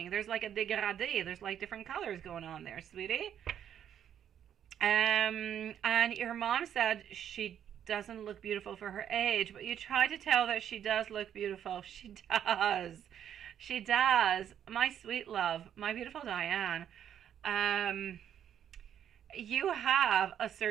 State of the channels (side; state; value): left; quieter; 9.6 dB